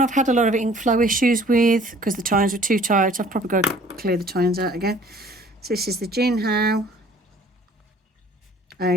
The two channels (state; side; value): normal; both; correlation 0.53